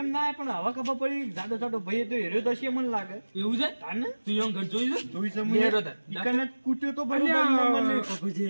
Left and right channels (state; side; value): inverted; both; correlation -1.00